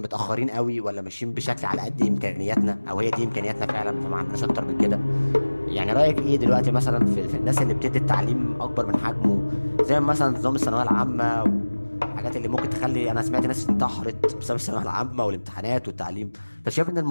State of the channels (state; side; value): inverted; both; correlation -1.00